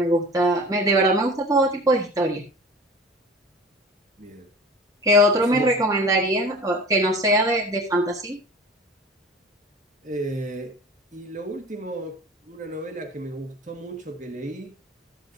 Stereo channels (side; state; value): both; normal; correlation 0.40